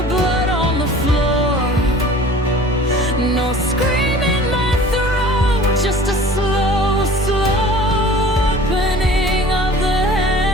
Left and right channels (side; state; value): both; normal; correlation 0.44